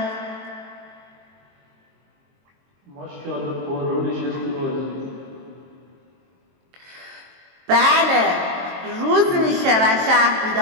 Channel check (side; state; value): left; late; 22 ms